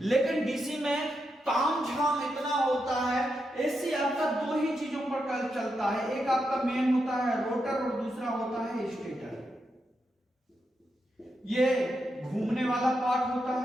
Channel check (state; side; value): normal; both; correlation 0.85